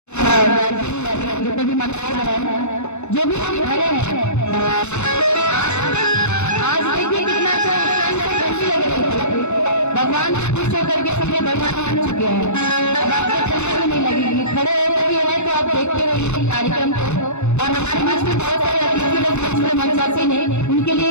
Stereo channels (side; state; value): right; late; 0.82 ms